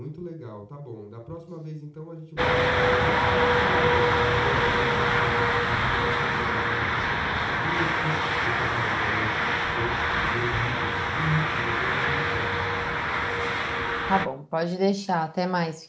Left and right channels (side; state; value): both; identical; correlation 1.00